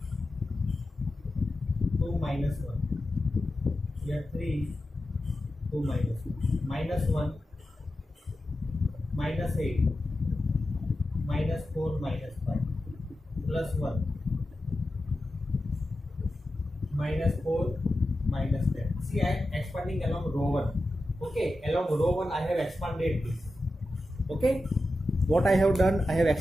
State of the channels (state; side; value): normal; both; correlation 0.91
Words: 2, minus 1. Here 3, 2, minus 1. Minus 1, minus 8, minus 4, minus 5, plus 1, minus 4, minus 10. See, I am expanding along row 1. Okay, along row 1 I have expanded this. Okay, what I have done, I have